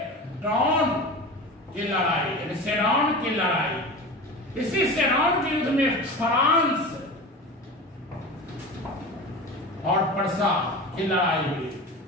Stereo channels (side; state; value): both; normal; correlation 0.31